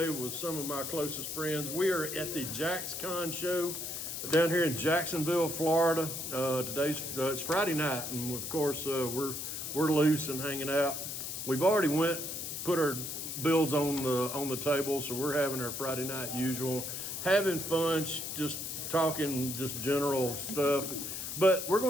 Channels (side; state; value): left; noise; hiss, 5 dB below the sound